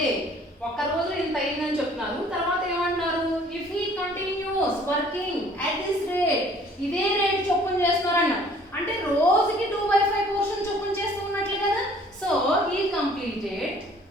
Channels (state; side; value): normal; both; correlation 0.55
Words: ఒక రోజు ఇంత అయిందని చెప్తున్నారు. తర్వాత ఏమంటున్నారు? if he continues working at this rate, ఇదే రేట్ చొప్పున చేస్తున్నారన్న. అంటే రోజుకి 2/5 పోర్షన్ చొప్పున చేస్తూ ఉన్నట్లే కదా. So he completed